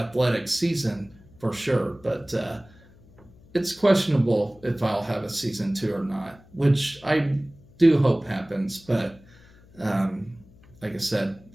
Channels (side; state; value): left; noise; hum, 26 dB below the sound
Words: season for sure, but it's questionable if I'll have a season 2 or not, which I do hope happens. But like I said,